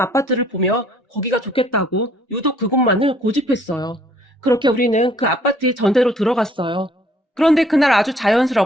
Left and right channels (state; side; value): normal; both; correlation 0.60